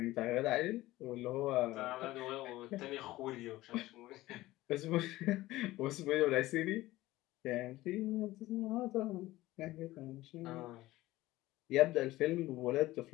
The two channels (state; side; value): quieter; right; 17.3 dB